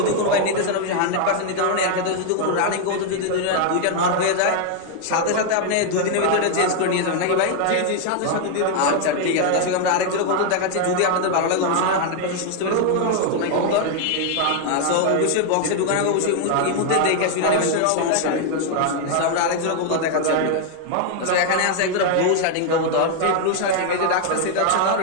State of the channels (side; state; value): both; different; correlation 0.00